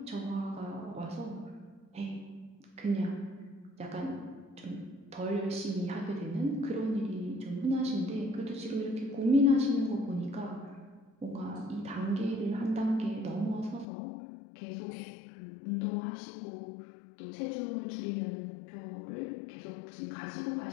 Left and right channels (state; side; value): drops out; right; at 13.9 s